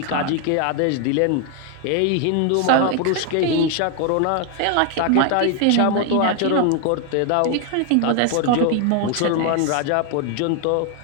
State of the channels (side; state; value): both; different; correlation 0.01